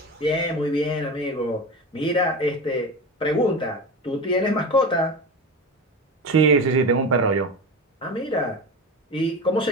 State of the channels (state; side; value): normal; both; correlation 0.26